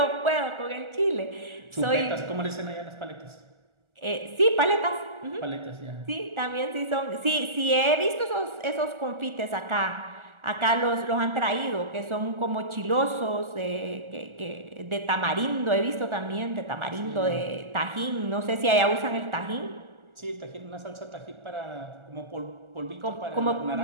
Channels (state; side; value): late; left; 1.4 ms